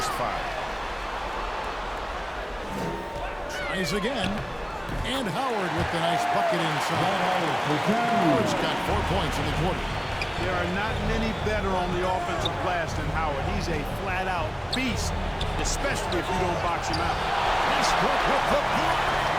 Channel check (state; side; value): identical; both; correlation 1.00